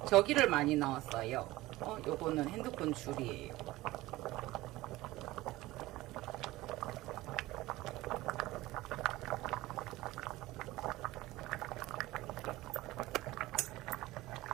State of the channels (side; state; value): left; quieter; 18.1 dB